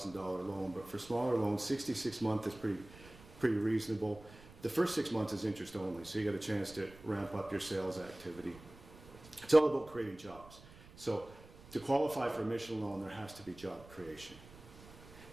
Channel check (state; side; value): noise; right; rumble, 20 dB below the sound